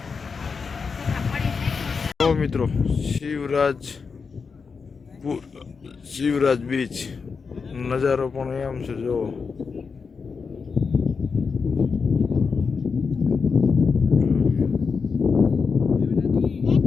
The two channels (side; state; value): right; quieter; 5.3 dB